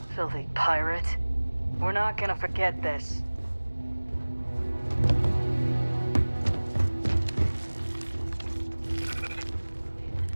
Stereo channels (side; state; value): both; inverted; correlation -1.00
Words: Filthy pirate. We're not gonna forget this.